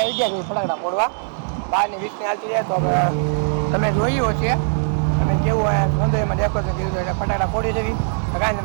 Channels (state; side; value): silent; left; 65 dB below the other